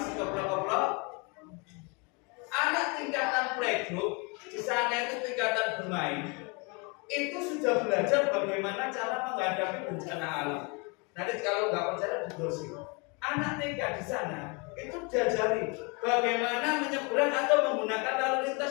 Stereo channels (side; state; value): right; quieter; 31.2 dB